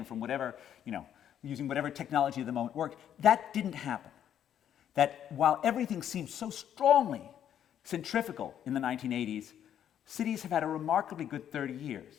from whatever, using whatever technology of the moment worked. That didn't happen. That while everything seemed so strongly centrifugal in the 1980s, cities have had a remarkably good 30 years.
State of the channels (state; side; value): quieter; right; 9.9 dB